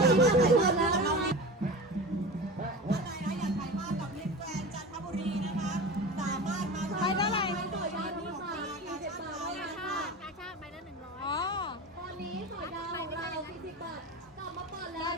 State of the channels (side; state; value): both; normal; correlation 0.31